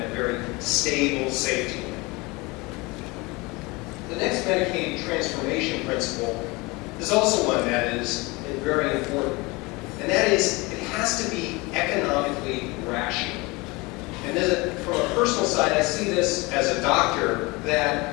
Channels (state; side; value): quieter; right; 24.6 dB